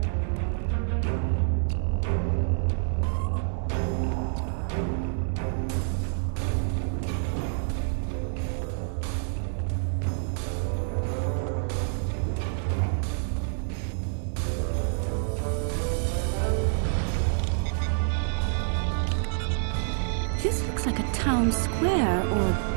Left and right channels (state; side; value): silent; left; digital silence